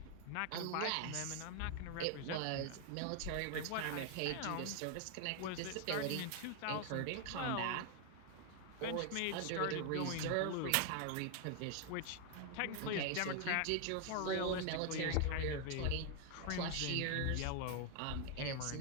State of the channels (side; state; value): both; different; correlation 0.01